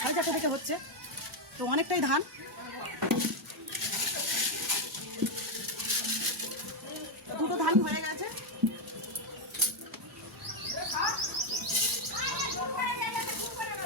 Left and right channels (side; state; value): both; normal; correlation 0.04